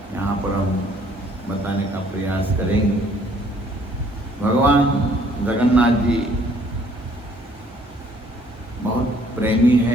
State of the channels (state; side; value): normal; both; correlation 0.61